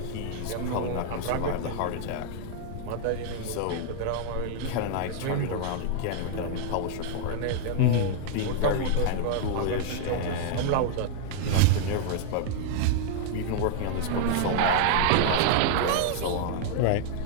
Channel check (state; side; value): different; both; correlation -0.01